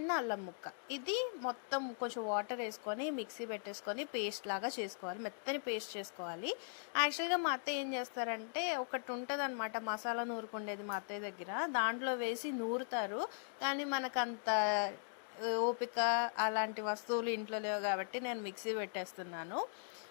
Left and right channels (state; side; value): silent; right; digital silence